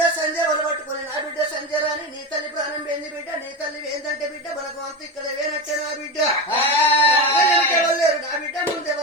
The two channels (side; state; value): both; normal; correlation 0.20